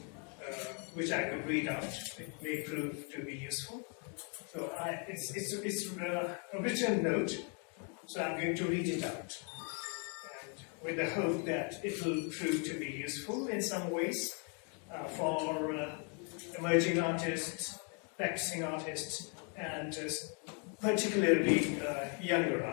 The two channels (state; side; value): quieter; right; 38.4 dB